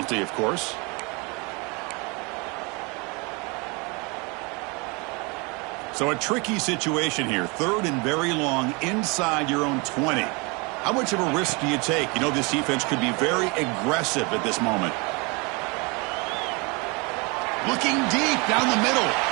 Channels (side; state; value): left; quieter; 29.3 dB